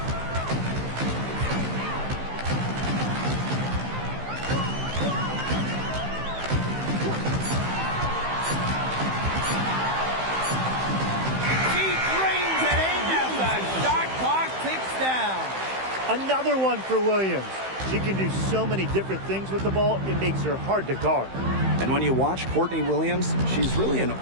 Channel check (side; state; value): left; late; 15 ms